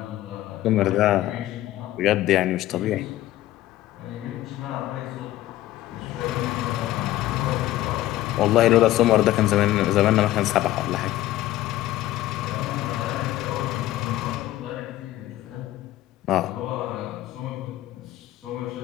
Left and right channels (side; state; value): right; quieter; 15.0 dB